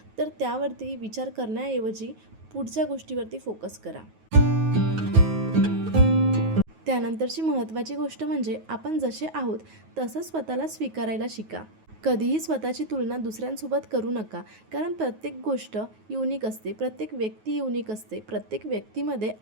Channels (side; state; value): left; late; 9.4 ms